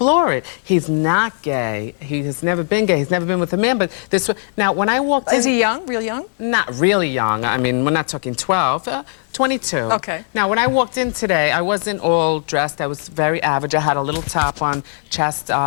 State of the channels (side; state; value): right; silent; 61 dB below the other